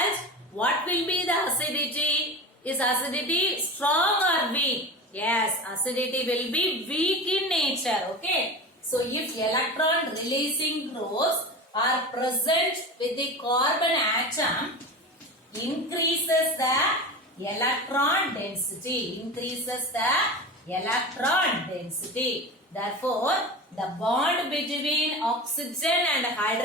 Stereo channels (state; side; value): normal; both; correlation 0.29